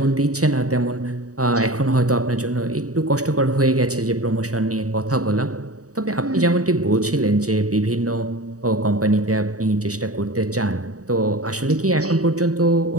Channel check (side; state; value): left; late; 0.66 ms